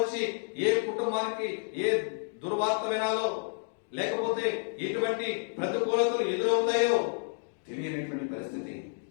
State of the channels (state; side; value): silent; right; digital silence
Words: ఏ కుటుంబానికి ఏ దుర్వార్త వినాలో, లేకపోతే ఎటువంటి ప్రతికూలతలు ఎదురవుతాయో తెలియనటువంటి పరిస్థితి.